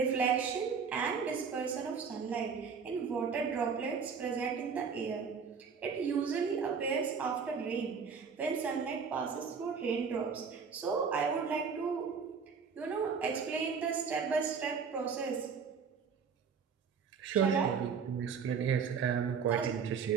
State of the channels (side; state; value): left; quieter; 6.0 dB